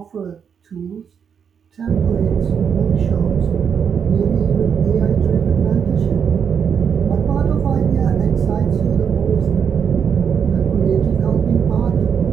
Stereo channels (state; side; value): quieter; left; 7.2 dB